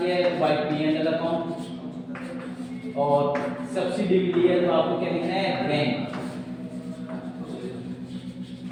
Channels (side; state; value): both; identical; correlation 1.00